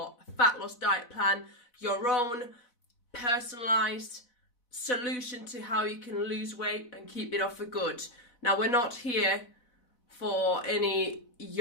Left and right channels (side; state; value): right; late; 4.0 ms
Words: fat loss diet plan, your own personalized solution to how you can lose weight and keep it off for good. Now, we're not here for any